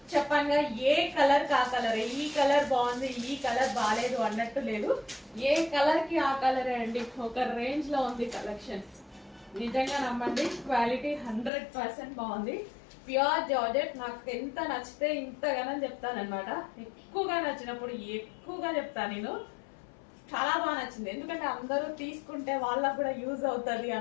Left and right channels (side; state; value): right; drops out; at 11.5 s